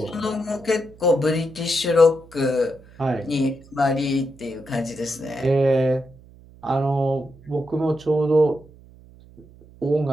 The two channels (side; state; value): right; noise; hum, 23 dB below the sound